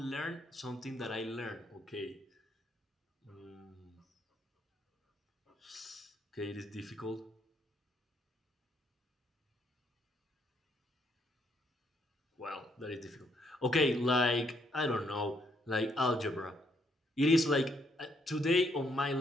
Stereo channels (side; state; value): both; normal; correlation 0.72